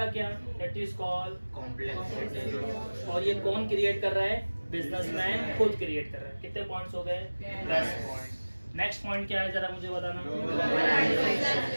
क्या? That is called complex. और ये कौन क्रिएट कर रहा है? बिजनेसमैन खुद क्रिएट कर रहा है। कितने पॉइंट्स हो गए? 10 पॉइंट। नेक्स्ट पॉइंट क्या है जरा मुझे बताना।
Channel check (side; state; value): both; inverted; correlation -1.00